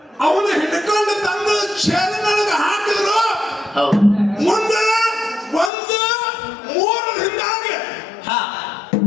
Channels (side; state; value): right; drops out; at 5.7 s